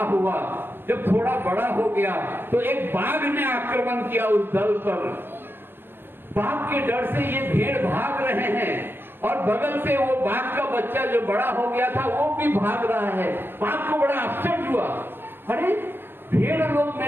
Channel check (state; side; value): late; left; 0.098 ms